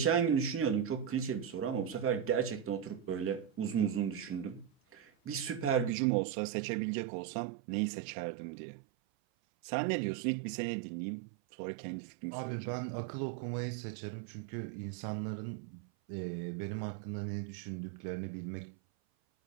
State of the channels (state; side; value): drops out; left; at 5.9 s